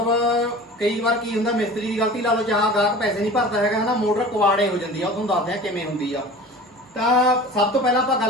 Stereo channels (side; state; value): both; normal; correlation 0.39